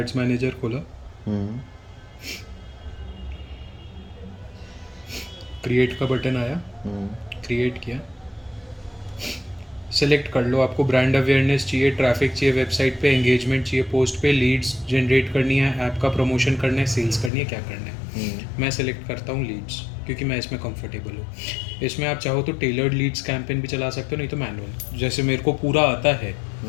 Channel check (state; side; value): drops out; right; at 17.3 s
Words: मैनेजर खोला, क्रिएट का बटन आया, क्रिएट किया, सेलेक्ट कर लो आपको ब्रांड अवेयरनेस चाहिए, ट्रैफिक चाहिए वेबसाइट पे, एंगेजमेंट चाहिए पोस्ट पे, लीड्स जनरेट करनी है, ऐप का प्रमोशन करना है, सेल्स करनी है, क्या करना है। मैं सेलेक्ट करता हूँ लीड्स क्योंकि मैं इसमें कंफर्टेबल हूँ। इसमें आप चाहो तो टेलर्ड लीड्स कैंपेन भी चला सकते हो, नहीं तो मैनुअल। जैसे मेरे को पूरा आता है